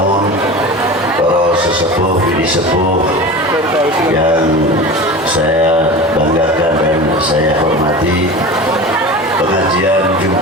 para sesepuh, bini sepuh yang saya banggakan dan saya hormati, pengajian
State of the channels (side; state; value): both; normal; correlation 0.32